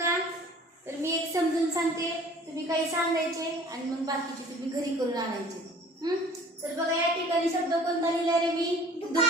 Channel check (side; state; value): both; normal; correlation 0.49